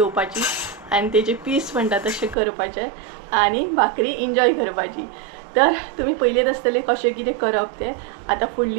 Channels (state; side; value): drops out; left; at 2.4 s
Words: आणि तेचे पीस म्हणटा तशें करपाचे आणि भाकरी एन्जॉय करपाची. तर तुम्ही पयलेच आसतले कशें कितें करप तें. आता